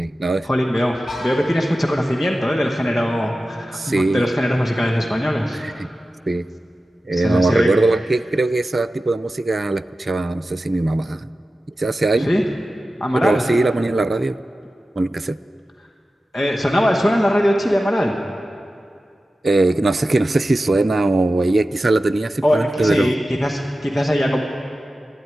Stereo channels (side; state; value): both; normal; correlation 0.94